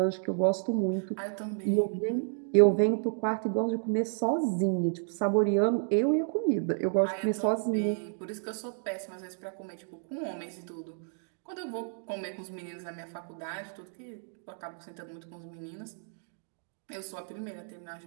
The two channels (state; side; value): silent; left; 57 dB below the other